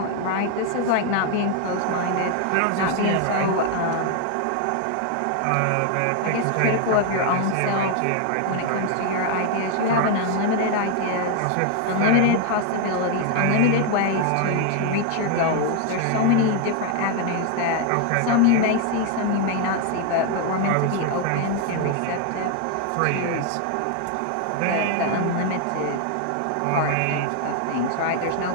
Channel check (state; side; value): different; both; correlation 0.00